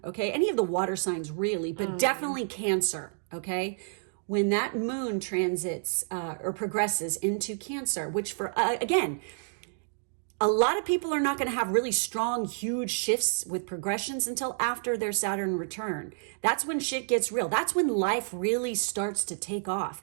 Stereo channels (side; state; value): left; silent; digital silence